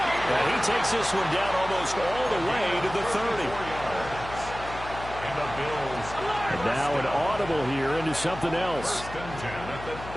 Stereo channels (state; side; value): noise; left; hum, 12 dB below the sound